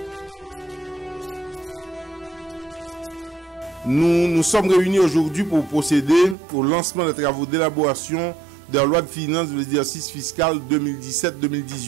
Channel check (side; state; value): left; drops out; at 6.4 s